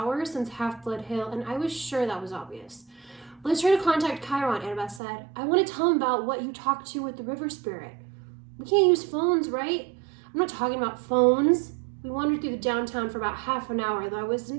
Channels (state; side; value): drops out; left; at 5.0 s